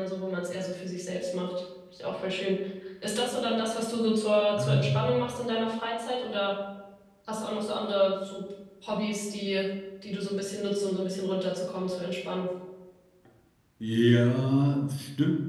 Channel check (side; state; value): both; identical; correlation 1.00